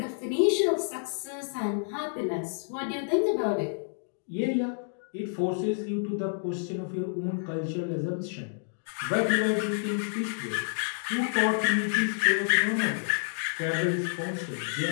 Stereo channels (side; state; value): right; silent; digital silence